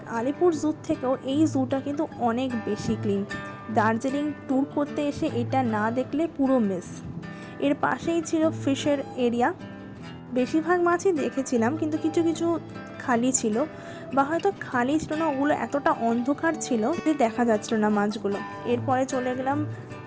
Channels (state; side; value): identical; both; correlation 1.00